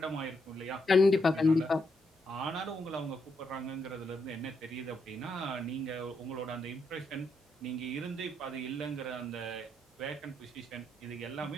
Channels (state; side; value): normal; both; correlation 0.79